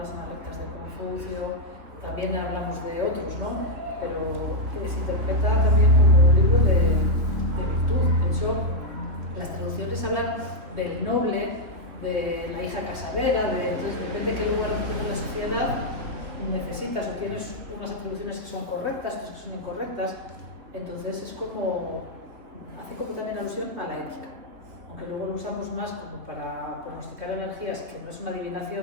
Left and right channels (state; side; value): late; left; 3.6 ms